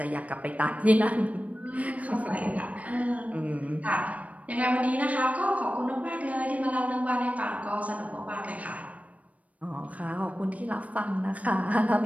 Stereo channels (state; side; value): late; left; 0.068 ms